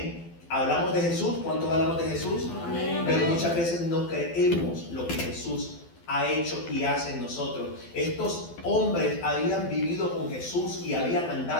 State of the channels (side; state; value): right; late; 12 ms